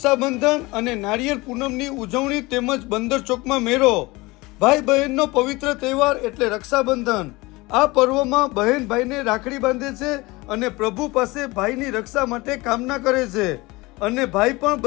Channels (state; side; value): quieter; right; 22.6 dB